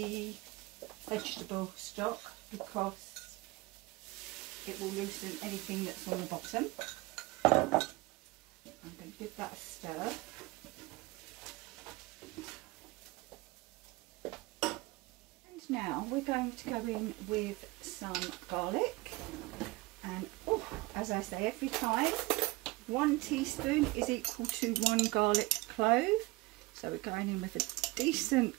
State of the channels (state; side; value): quieter; left; 22.0 dB